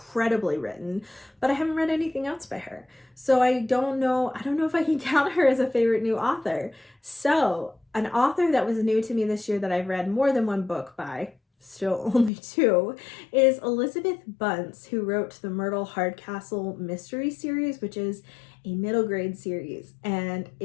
written, but I haven't read anything else by her. So I don't know if I can count her as a favorite new author. So an author that was new to me this year that I've read more than one book by, still only 2, is Elizabeth Bunce, who wrote the Myrtle Hardcastle mystery series, which is a middle grade series, and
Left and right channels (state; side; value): drops out; right; at 12.3 s